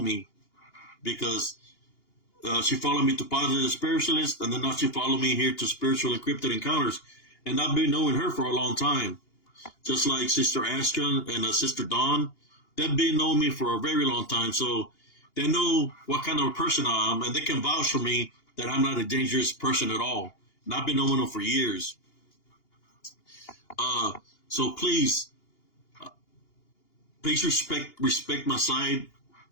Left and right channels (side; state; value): right; late; 2.8 ms